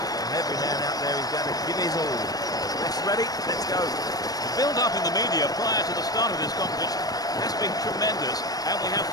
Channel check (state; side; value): late; right; 0.18 ms